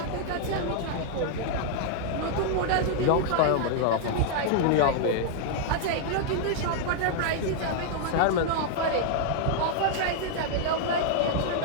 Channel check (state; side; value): different; both; correlation -0.01